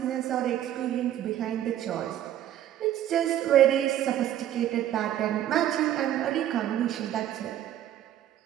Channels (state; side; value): quieter; left; 11.7 dB